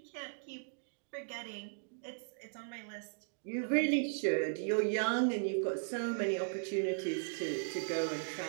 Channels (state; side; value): silent; left; digital silence